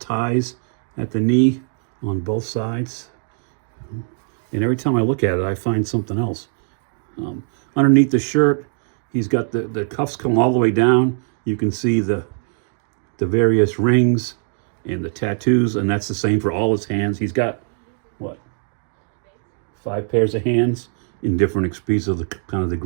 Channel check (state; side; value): silent; left; 56 dB below the other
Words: at the knee on both sides. And every time I look at it, I find something else. Underneath the shirt, he's got the cuffs come all the way down. You can see the various rings and the tattoos, and that's the same for all his hands. He's got, what, 5 pairs of hands in different speeds of the kind of the